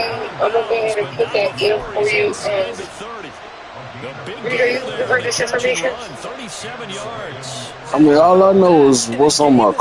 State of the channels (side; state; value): both; identical; correlation 1.00